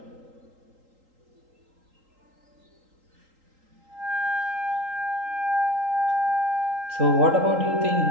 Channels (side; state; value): left; late; 3.8 ms